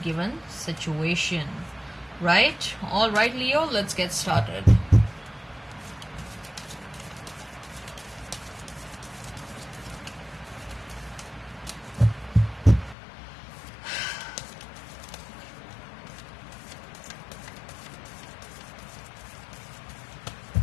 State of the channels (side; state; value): right; drops out; at 13.0 s